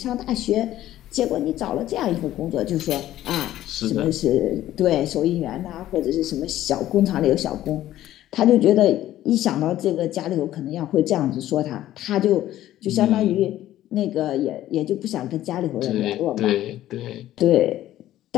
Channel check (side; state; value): right; quieter; 13.6 dB